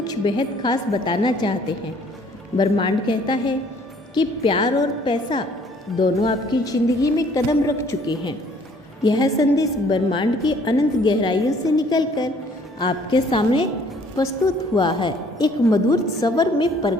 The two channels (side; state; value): both; normal; correlation 0.59